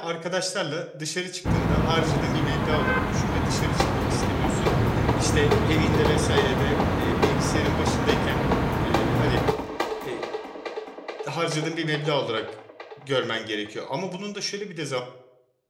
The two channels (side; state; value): both; identical; correlation 1.00